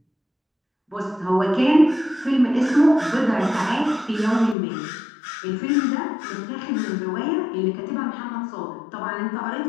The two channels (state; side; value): drops out; right; at 4.5 s